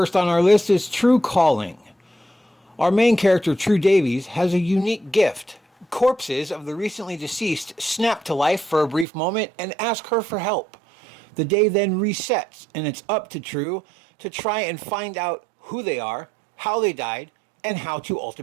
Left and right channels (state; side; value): drops out; left; at 9.1 s